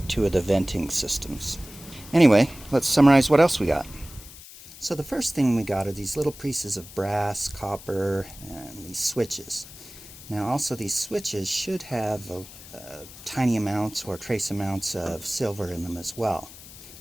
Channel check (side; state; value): left; noise; hiss, 17 dB below the sound